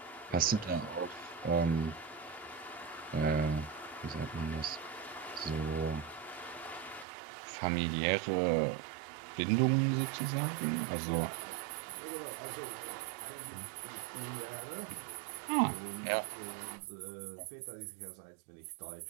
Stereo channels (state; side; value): drops out; left; at 7.1 s